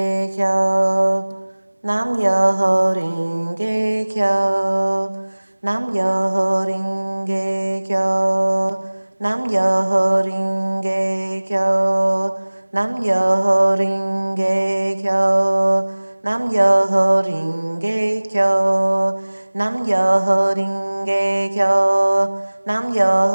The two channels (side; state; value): both; inverted; correlation -1.00